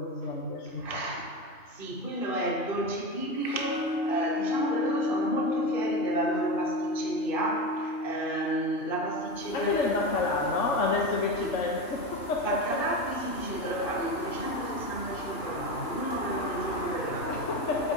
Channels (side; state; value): right; late; 2.9 ms